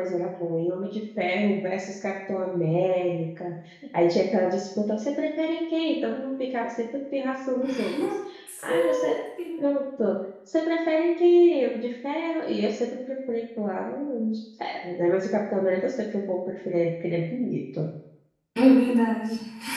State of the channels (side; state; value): both; identical; correlation 1.00